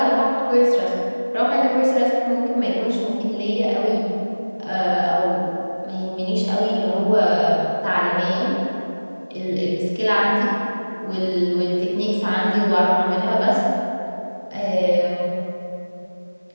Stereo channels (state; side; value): inverted; both; correlation -1.00